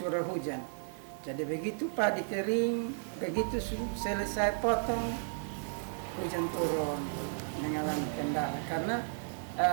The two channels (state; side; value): silent; left; 55 dB below the other